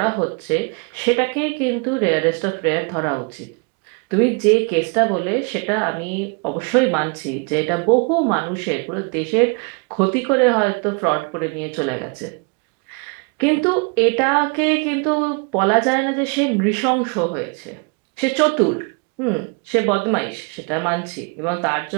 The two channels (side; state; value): left; quieter; 34.5 dB